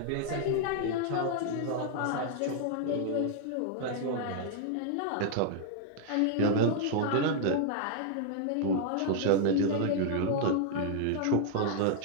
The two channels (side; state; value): both; different; correlation 0.00